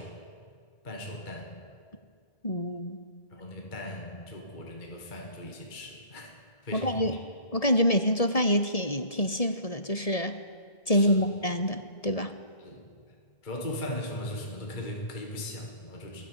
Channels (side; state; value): right; late; 1.7 ms